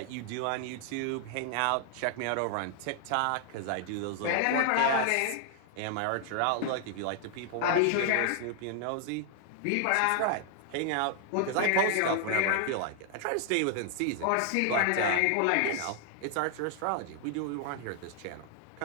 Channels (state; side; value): different; both; correlation 0.00